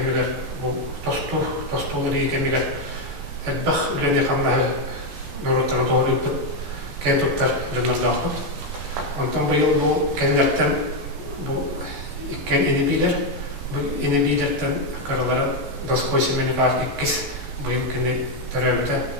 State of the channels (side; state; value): left; late; 14 ms